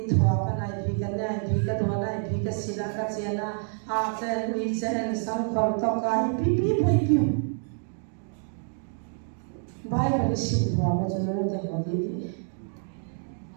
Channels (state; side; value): silent; left; 56 dB below the other